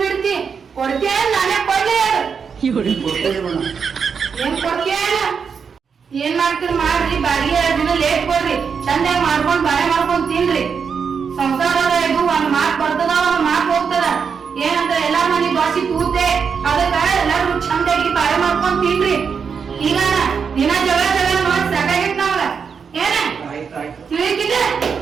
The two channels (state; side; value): quieter; left; 6.2 dB